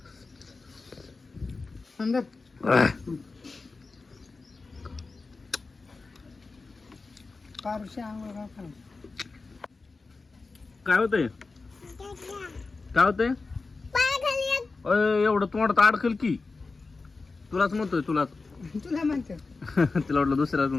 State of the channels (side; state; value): right; quieter; 3.9 dB